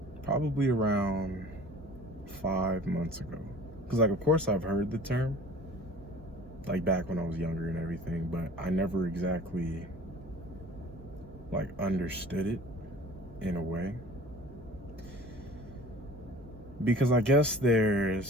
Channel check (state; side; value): normal; both; correlation 0.46